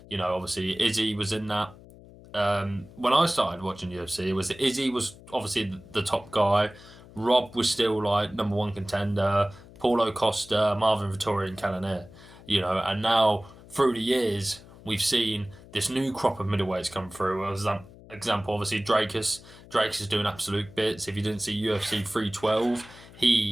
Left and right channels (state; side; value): noise; left; hum, 20 dB below the sound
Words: Obviously Izzy was in that. When I started watching UFC, it was Izzy was obviously the top guy. Rob was still like number one contender. Paulo Costa, Marvin Vettori, and Cannonier. And now through the years we've seen this new crop of middleweights come through. As an example, obviously Drakus. Drakus is doing absolute bits. If you didn't see UFC 312,